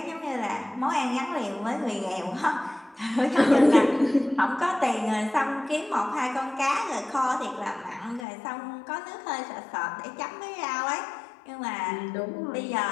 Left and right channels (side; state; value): right; drops out; at 8.2 s